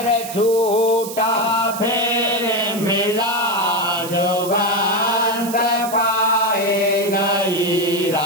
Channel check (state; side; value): noise; right; hiss, 11 dB below the sound